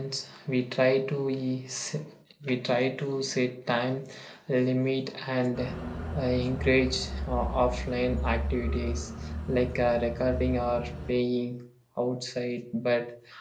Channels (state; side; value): identical; both; correlation 1.00